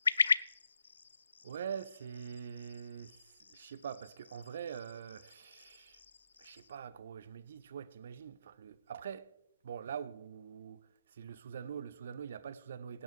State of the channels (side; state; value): both; inverted; correlation -0.81